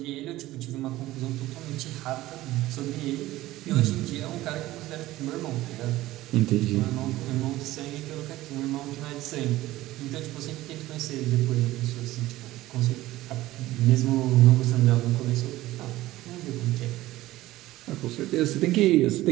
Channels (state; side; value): quieter; left; 16.6 dB